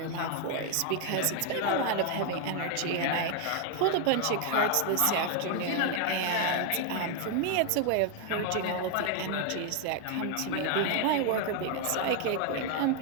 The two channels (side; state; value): both; different; correlation 0.00